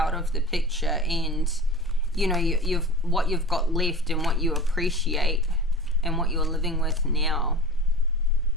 of the picture, and you've what you've got left and what you appreciate and what you're living with now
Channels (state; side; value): normal; both; correlation 0.35